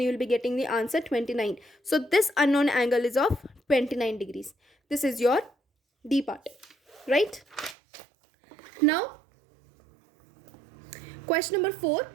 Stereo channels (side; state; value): left; drops out; at 7.8 s